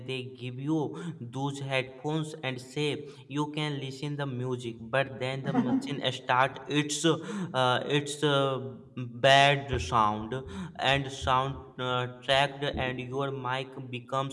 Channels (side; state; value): both; identical; correlation 1.00